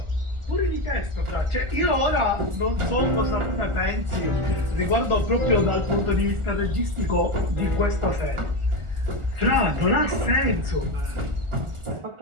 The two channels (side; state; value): left; late; 1.4 ms